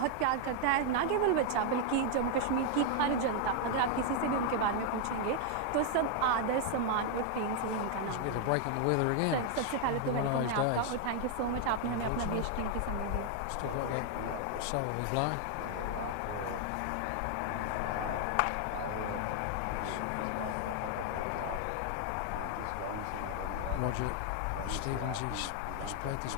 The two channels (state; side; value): different; both; correlation 0.00